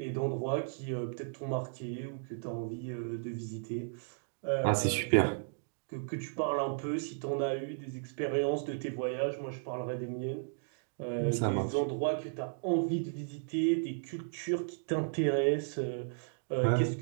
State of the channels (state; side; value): silent; left; digital silence